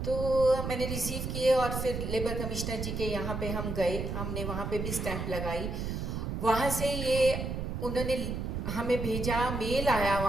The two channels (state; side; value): noise; right; rumble, 3 dB below the sound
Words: तो मैंने रिसीव किए, और फिर लेबर कमिश्नर जी के यहाँ पे हम गए, हमने वहाँ पे भी स्टैंप लगाई। वहाँ से ये उन्होंने हमें भेजा, मेल आया